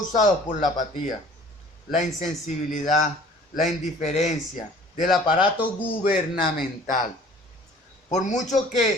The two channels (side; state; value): both; normal; correlation 0.50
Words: por la apatía, la insensibilidad, la indiferencia del aparato gubernamental. Por mucho